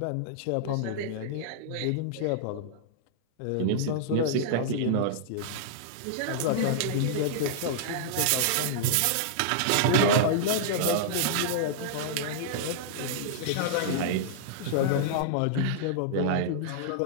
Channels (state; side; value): different; both; correlation -0.01